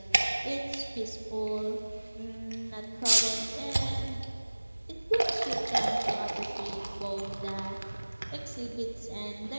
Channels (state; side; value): inverted; both; correlation -1.00